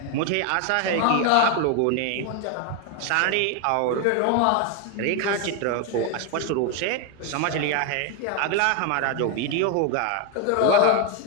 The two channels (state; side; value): different; both; correlation 0.01